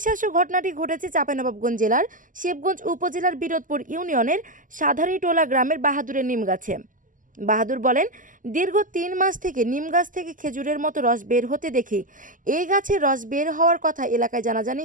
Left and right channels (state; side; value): late; left; 0.38 ms